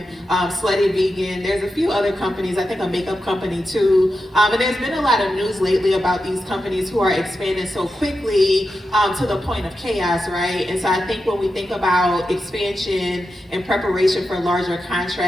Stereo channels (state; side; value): normal; both; correlation 0.89